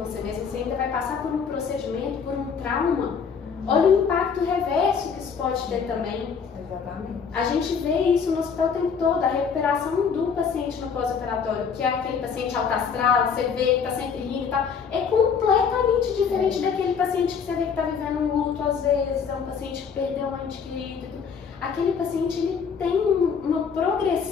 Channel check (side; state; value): right; quieter; 6.3 dB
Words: você mesmo, você ainda vai passar por um procedimento, por um trauma. Olha o impacto reverso que isso pode ter também. Exatamente. A gente vê isso no hospital o tempo todo, a recuperação do paciente no pós-operatório, que é aquele paciente alto astral, você vê que está sempre rindo e tal, é completamente diferente daquele paciente que você vê que está vivendo um luto às vezes, é um paciente que perdeu um ente querido. Aquele paciente, ele tem uma